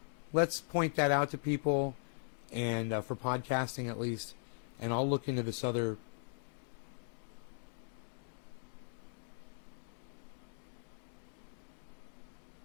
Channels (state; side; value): silent; right; digital silence